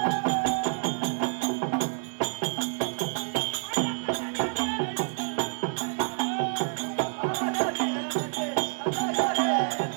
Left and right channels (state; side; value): silent; left; 59 dB below the other